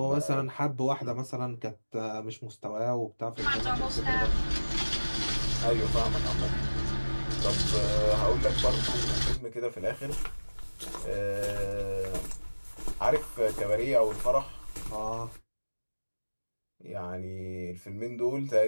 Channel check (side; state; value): both; inverted; correlation -1.00